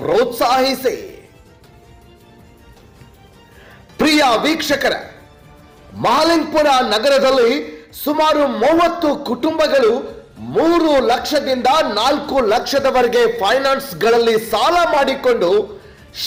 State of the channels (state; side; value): identical; both; correlation 1.00